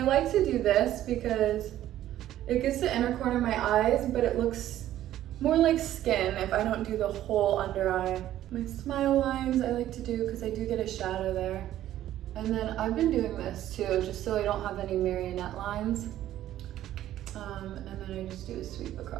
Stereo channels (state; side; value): quieter; left; 12.9 dB